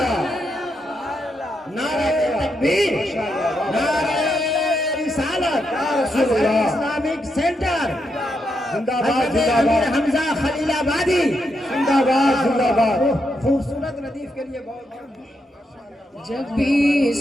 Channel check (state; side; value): normal; both; correlation 0.82